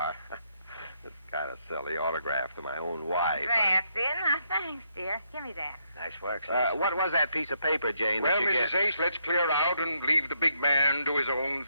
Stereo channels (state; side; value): inverted; both; correlation -0.75